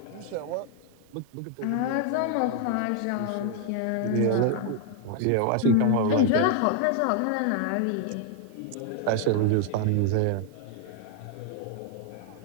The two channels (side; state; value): both; different; correlation 0.00